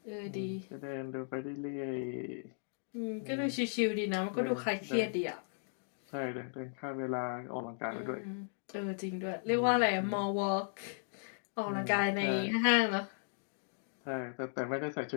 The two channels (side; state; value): right; silent; digital silence